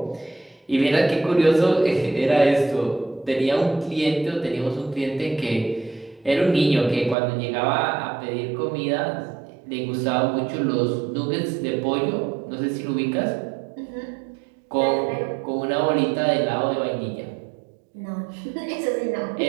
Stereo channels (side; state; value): left; drops out; at 7.2 s